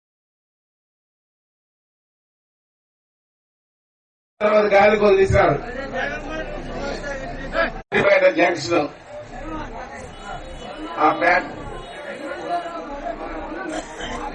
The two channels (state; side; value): identical; both; correlation 1.00